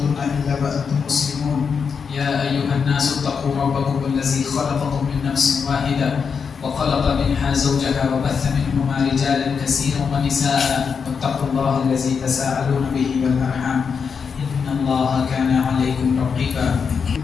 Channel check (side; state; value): right; quieter; 6.1 dB